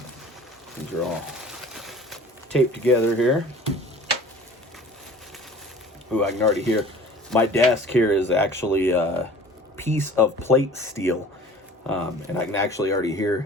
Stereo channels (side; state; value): both; normal; correlation 0.45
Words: These are all taped together here. Ooh, I can already hear. My desk here is actually piece of plate steel, and I can actually already